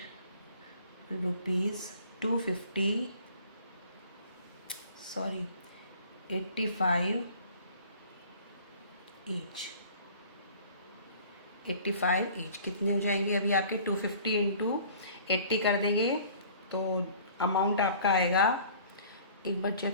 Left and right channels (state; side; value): inverted; both; correlation -0.50